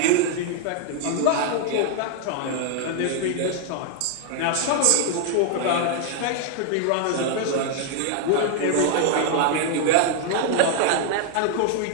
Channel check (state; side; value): different; both; correlation 0.00